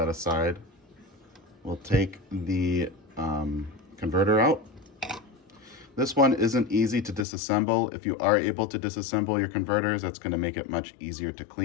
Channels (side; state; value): right; drops out; at 7.2 s